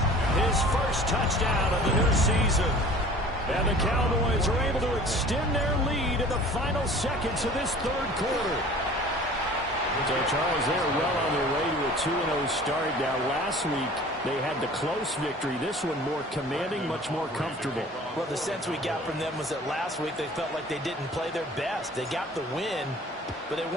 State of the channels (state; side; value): normal; both; correlation 0.46